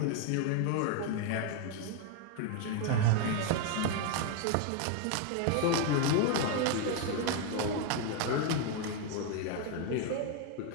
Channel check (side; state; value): both; different; correlation 0.00